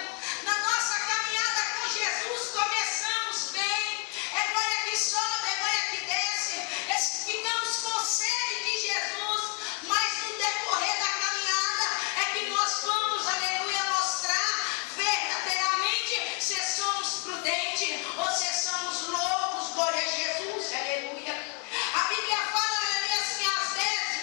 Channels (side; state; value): right; quieter; 37.9 dB